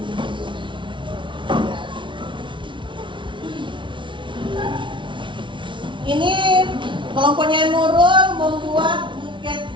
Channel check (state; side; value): late; left; 0.24 ms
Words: Ini kelompoknya Nurul membuat buket